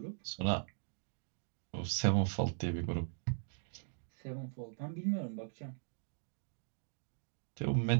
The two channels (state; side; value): silent; left; digital silence